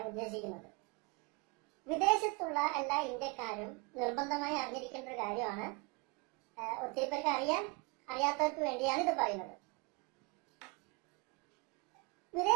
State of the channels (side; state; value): left; quieter; 28.8 dB